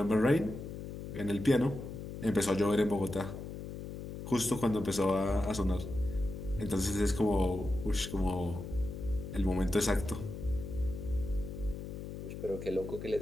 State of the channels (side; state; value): left; noise; hum, 8 dB below the sound